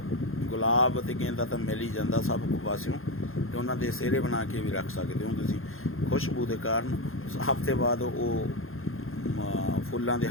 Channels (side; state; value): right; late; 0.61 ms